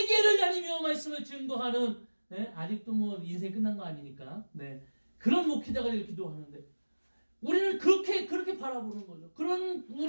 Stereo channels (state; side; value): inverted; both; correlation -1.00